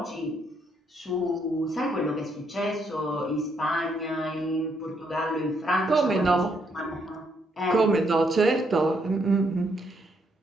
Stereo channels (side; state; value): both; normal; correlation 0.74